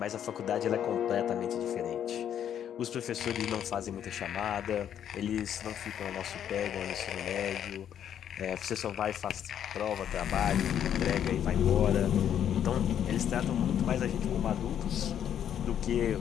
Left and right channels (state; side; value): quieter; right; 9.6 dB